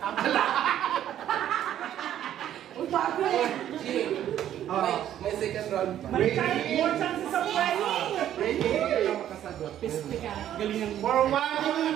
Uy, bago eh. May second round pa. May more chances of winning. Ready? Piste ka. Galing ng For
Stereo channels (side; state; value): left; quieter; 11.3 dB